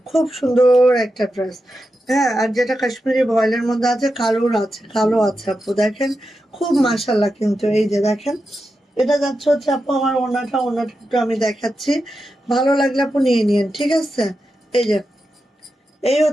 খুব সুন্দর একটা ড্রেস। হ্যাঁ, আর যেটা কাশ্মীরি ভয়েলের মধ্যে আছে, কালোর আছে, কালো আছে আপু, দেখেন, খুব মাশাল্লাহ। কিন্তু এই যে দেখেন, এটা যাচ্ছে হচ্ছে আপু আমার ওড়নাটা। ওড়নাটা একটু আমি দেখাচ্ছি, ভালো লাগলে আপু নিয়ে নিন। ঠিক আছে, এই যে এই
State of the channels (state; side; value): normal; both; correlation 0.89